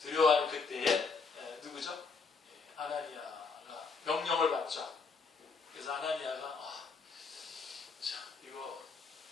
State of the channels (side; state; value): right; quieter; 4.8 dB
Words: 두려워하는 그때에 누구죠? 아나니아가 명령을 받죠. 그래서 아나니아가 이거